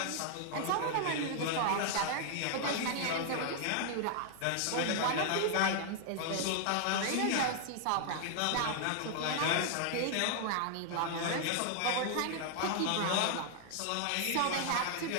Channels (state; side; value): different; both; correlation 0.00